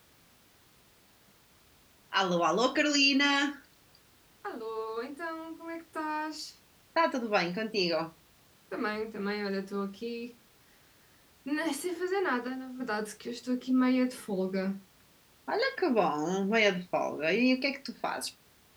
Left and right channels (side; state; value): both; identical; correlation 1.00